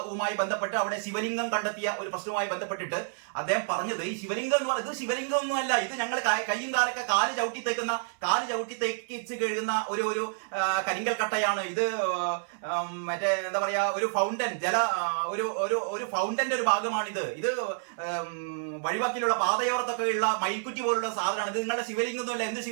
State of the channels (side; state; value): left; silent; 59 dB below the other